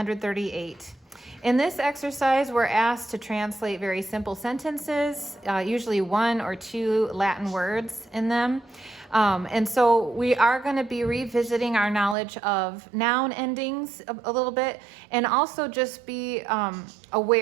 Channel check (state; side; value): drops out; left; at 12.2 s